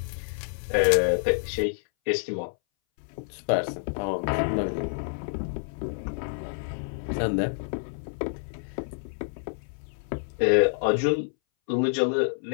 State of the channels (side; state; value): right; silent; 60 dB below the other